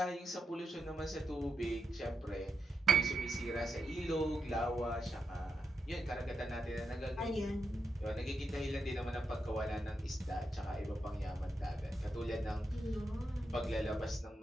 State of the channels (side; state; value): both; normal; correlation 0.84